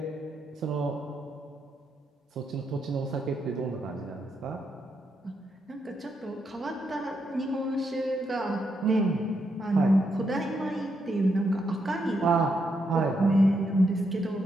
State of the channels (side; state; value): both; normal; correlation 0.80